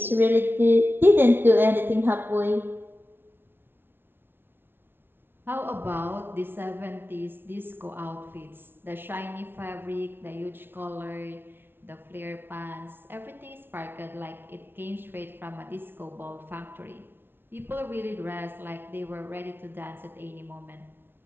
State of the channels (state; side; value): late; left; 0.11 ms